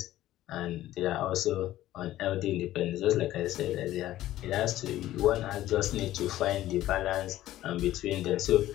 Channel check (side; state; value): right; quieter; 14.5 dB